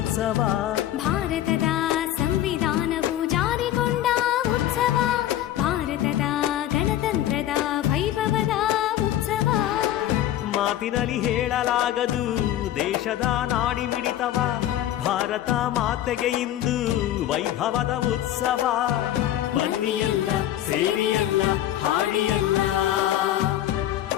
ಭಾರತದ ಸಂವಿಧಾನವು ಜಾರಿಗೊಂಡ ಉತ್ಸವ, ಭಾರತದ ಗಣತಂತ್ರದ ವೈಭವದ ಉತ್ಸವ. ಮಾತಿನಲ್ಲಿ ಹೇಳಲಾಗದು ದೇಶದ ನಾಡಿ ಮಿಡಿತವ, ಭಾರತ ಮಾತೆಗೆ ಇಂದು ವೈಭವದ ಉತ್ಸವ. ಬನ್ನಿಯಲ್ಲ ಸೇರಿಯಲ್ಲ ಹಾಡಿಯಲ್ಲ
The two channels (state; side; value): quieter; right; 12.5 dB